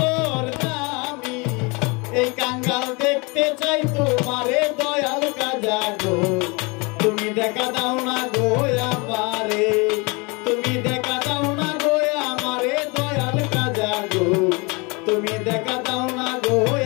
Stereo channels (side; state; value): right; quieter; 28.6 dB